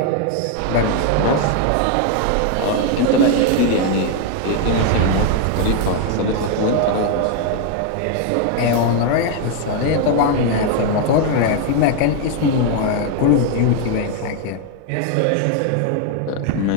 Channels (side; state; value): both; different; correlation 0.01